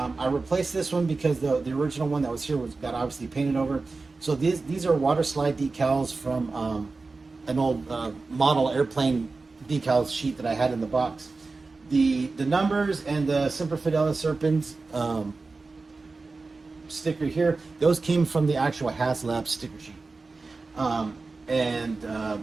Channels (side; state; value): left; quieter; 3.8 dB